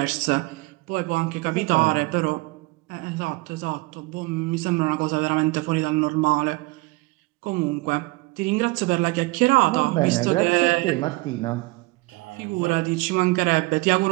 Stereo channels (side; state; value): left; quieter; 23.9 dB